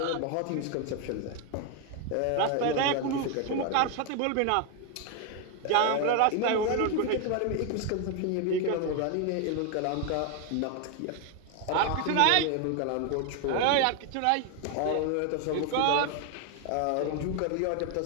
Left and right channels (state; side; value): different; both; correlation 0.01